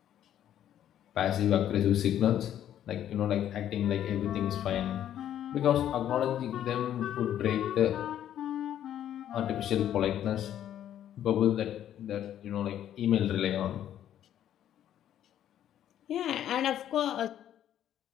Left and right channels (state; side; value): quieter; right; 10.9 dB